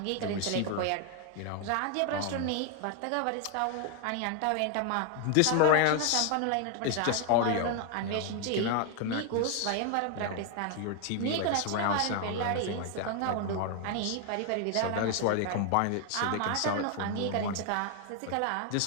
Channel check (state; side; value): different; both; correlation 0.00